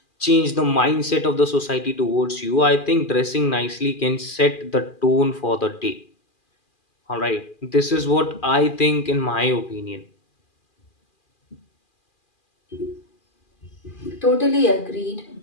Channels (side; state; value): right; late; 2.4 ms